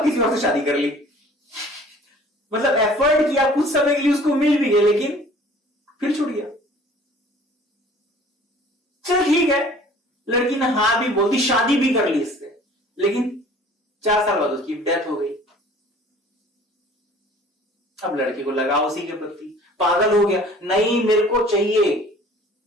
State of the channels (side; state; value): both; normal; correlation 0.50